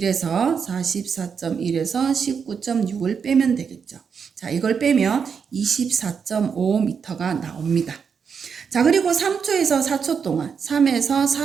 19.6을 빼면 되겠죠. 자, 이걸 빼면 24.5m가 나옵니다. 자, 그리고 3초에서 4초 동안, 3에서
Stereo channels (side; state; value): left; quieter; 6.4 dB